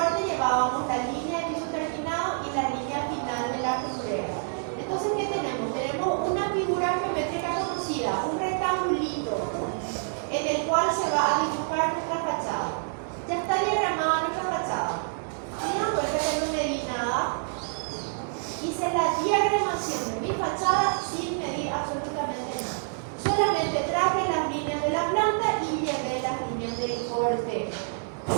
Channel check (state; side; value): silent; left; digital silence